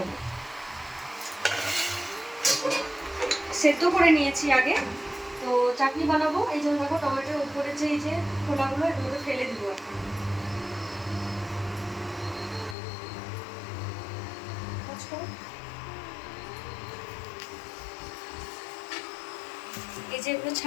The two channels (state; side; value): drops out; right; at 12.8 s